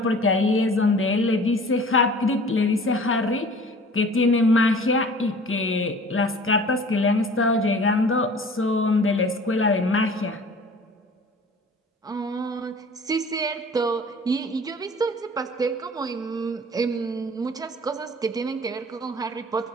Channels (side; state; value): both; normal; correlation 0.46